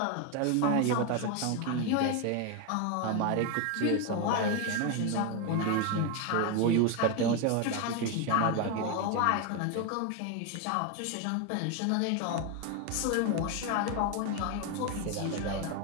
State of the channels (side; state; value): both; different; correlation 0.02